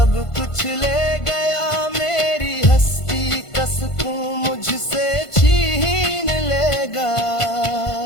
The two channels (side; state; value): right; late; 1.5 ms